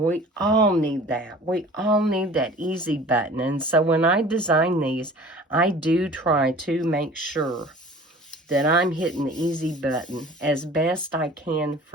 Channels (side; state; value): both; normal; correlation 0.45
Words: all need that. We all need that easy button. And so when I design these, I do try to make sure that I'm hitting the easy button as best I can